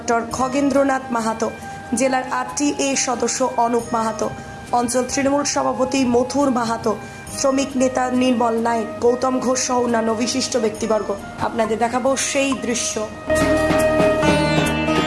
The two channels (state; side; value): identical; both; correlation 1.00